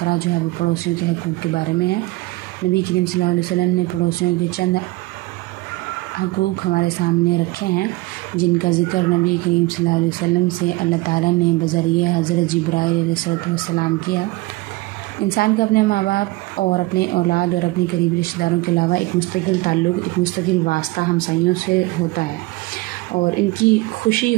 जो है वो पड़ोसियों के हक़ूक़ के बारे में है। नबी करीम सल्लल्लाहु अलैहि वसल्लम ने पड़ोसियों के चंद हक़ूक़ हमारे सामने रखे हैं, जिनका ज़िक्र नबी करीम सल्लल्लाहु अलैहि वसल्लम से अल्लाह ताला ने बज़रिए हज़रत जिब्राईल अलैहिस्सलाम किया। इंसान का अपने माँ बाप और अपने औलाद और अपने करीबी रिश्तेदारों के अलावा एक मुस्तकिल ताल्लुक़, एक मुस्तकिल वास्ता हमसायों से होता है और इनकी खुशी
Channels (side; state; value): left; quieter; 20.7 dB